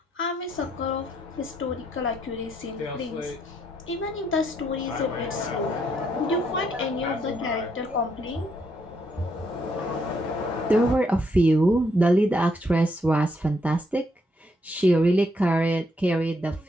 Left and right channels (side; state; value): both; normal; correlation 0.74